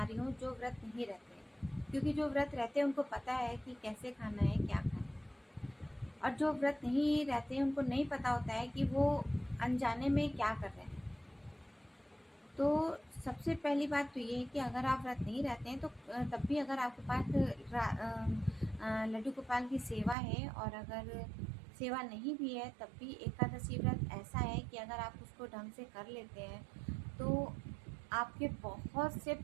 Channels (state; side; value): drops out; left; at 20.2 s